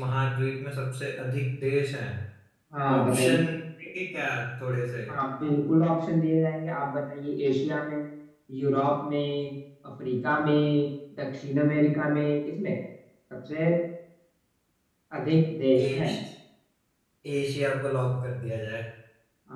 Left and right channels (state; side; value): identical; both; correlation 1.00